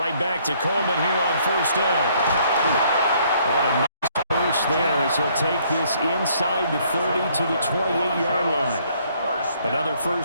back to Coleman here on first down. On a nice burst there as he'll take this inside the 30 to the 28-yard line. Another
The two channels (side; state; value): both; inverted; correlation -0.65